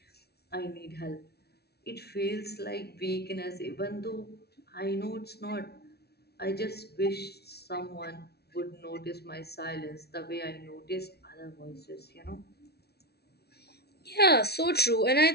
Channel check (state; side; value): late; right; 0.47 ms